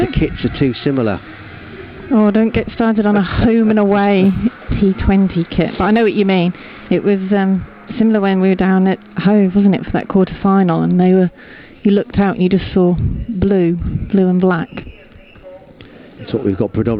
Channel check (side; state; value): both; identical; correlation 1.00